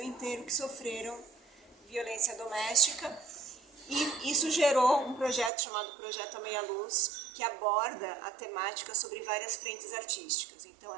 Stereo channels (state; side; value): drops out; left; at 5.5 s